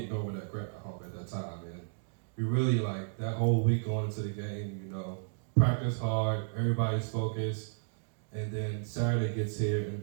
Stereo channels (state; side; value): silent; left; digital silence